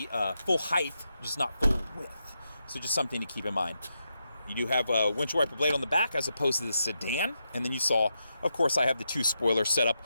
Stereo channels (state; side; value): inverted; both; correlation -0.85